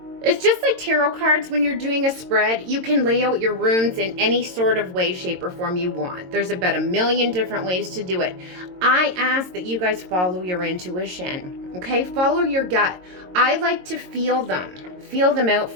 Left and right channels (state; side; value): late; left; 22 ms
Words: just like tarot cards. When you're doing a spread, you can lay out your runes in any sort of way, shape, or form you want. There's about a million different ways to do it. I ask that you guys follow your intuition. Okay? Follow your gut. I like to feel them out